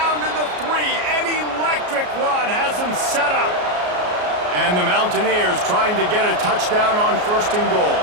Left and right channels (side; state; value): left; late; 33 ms